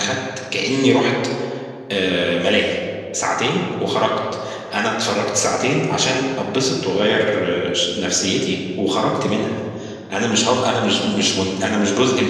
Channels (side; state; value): both; identical; correlation 1.00